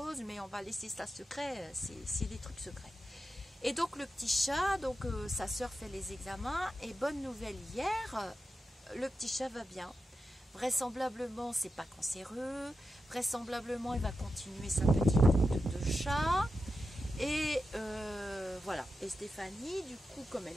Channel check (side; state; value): both; normal; correlation 0.90